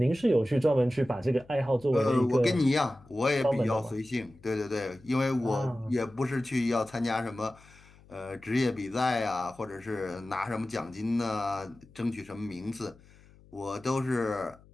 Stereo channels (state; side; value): noise; left; hum, 25 dB below the sound